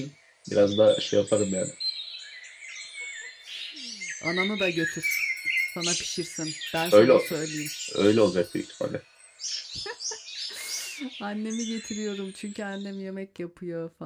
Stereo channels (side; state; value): both; identical; correlation 1.00